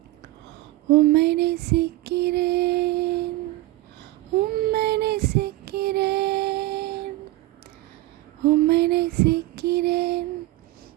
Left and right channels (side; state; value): left; quieter; 18.1 dB